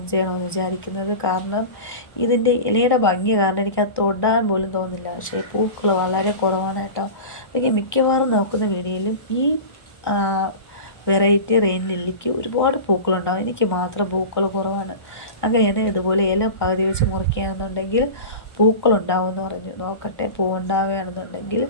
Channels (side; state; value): right; late; 1.2 ms